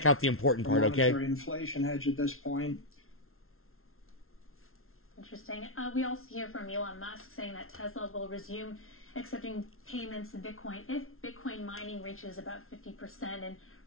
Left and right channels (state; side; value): late; right; 0.62 ms